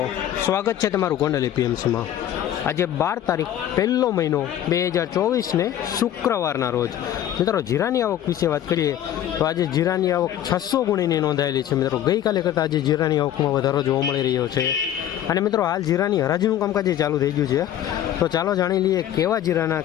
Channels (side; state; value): right; quieter; 11.4 dB